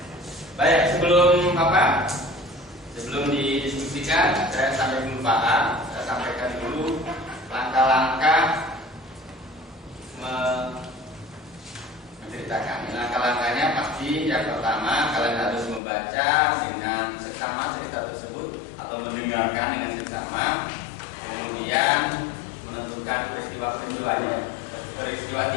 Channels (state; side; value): drops out; right; at 15.8 s